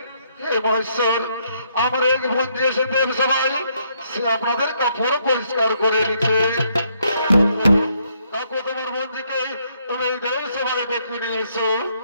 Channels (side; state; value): both; inverted; correlation -0.72